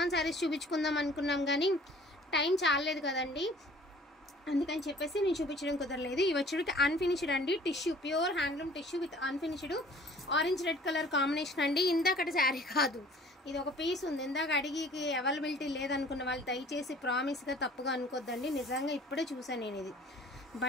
శారీస్ చూపించుకుందాం అనుకున్నాం కానీ టైం చాలలేదు కదండి, అందుకని చెప్పేసి నేను చూపించడం కుదరలేదు. ఇవి వచ్చేటికి అన్ఫినిష్డ్ అండి, tissue, pure handloom tissue with unfinished orange red colour combination అండి. ఇందాకటి శారీ కాదు, ఇది ఒక పీస్ ఉంది. ఇందాక అడిగికి అవైలబిలిటీ లేదనుకున్న వాళ్ళు దయచేసి ప్రామిస్గా తప్పుగా అనుకోద్దండి. నిజంగా ఇప్పుడే చూసాను నేను. ఇది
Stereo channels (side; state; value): both; normal; correlation 0.51